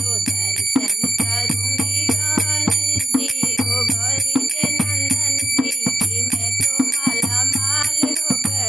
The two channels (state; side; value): normal; both; correlation 0.84